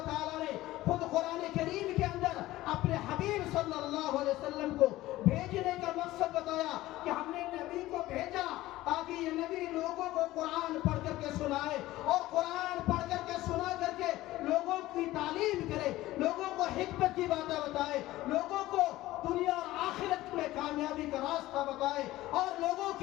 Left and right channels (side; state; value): right; quieter; 16.7 dB